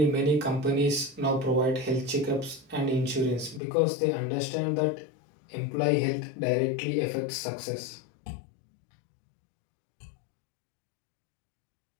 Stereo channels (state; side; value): drops out; right; at 3.6 s